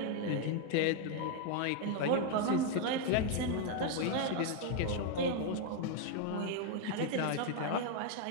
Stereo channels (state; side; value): different; both; correlation 0.01